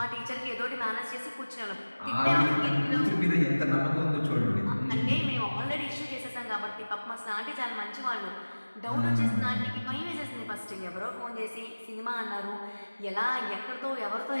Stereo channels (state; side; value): inverted; both; correlation -1.00